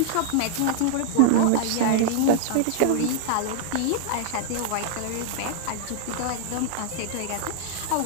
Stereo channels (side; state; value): both; different; correlation -0.01